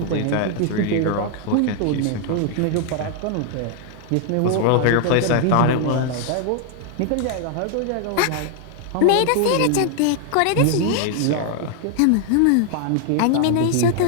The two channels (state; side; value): different; both; correlation 0.00